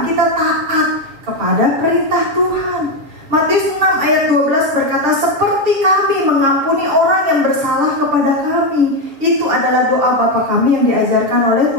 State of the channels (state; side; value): late; left; 6.7 ms